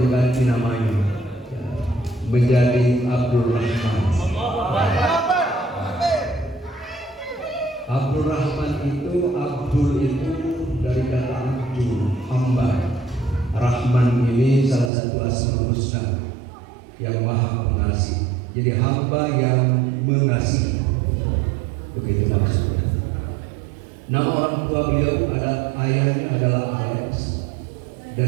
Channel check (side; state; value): left; drops out; at 14.9 s